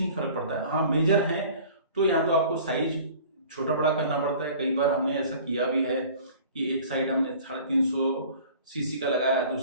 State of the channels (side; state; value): both; inverted; correlation -0.46